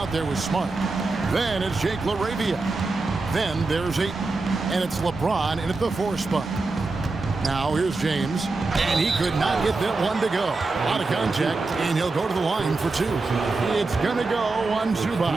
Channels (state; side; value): quieter; left; 3.6 dB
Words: there with Smart. Then it's Jake LaRavia. Then there's Ayton. And it's LeBron in at the 4 spot. Now here's James. And he could not get that one to go. Out of contact, and he'll go to the line for 2. It's going to go on